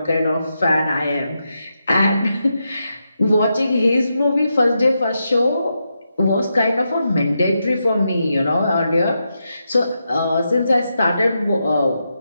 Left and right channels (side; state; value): both; inverted; correlation -0.85